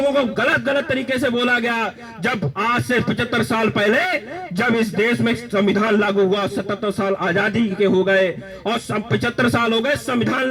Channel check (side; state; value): both; identical; correlation 1.00